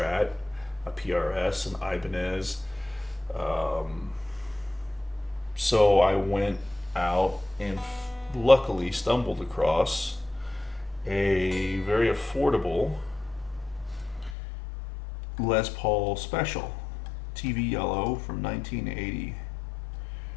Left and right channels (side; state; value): right; drops out; at 14.4 s